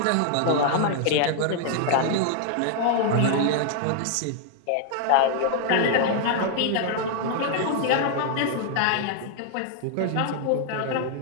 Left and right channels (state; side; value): different; both; correlation 0.00